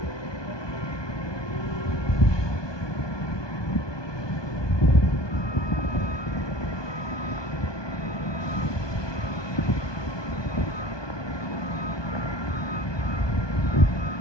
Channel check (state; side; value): late; right; 1.2 ms